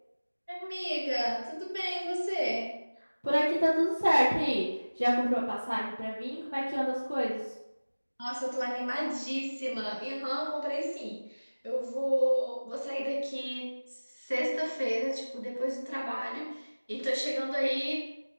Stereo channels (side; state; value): both; inverted; correlation -1.00